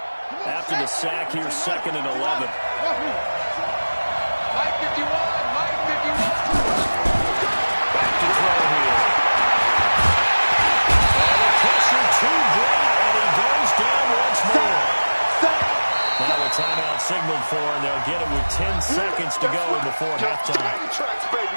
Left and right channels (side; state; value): both; inverted; correlation -1.00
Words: After the sack, here's 2nd and 11. Mike 51. Back to throw here. And a pressure to Brady. seconds to go before halftime. Train tracks,